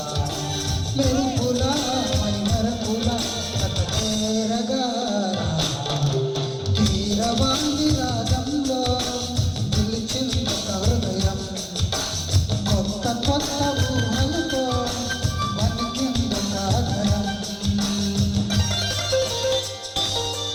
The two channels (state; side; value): identical; both; correlation 1.00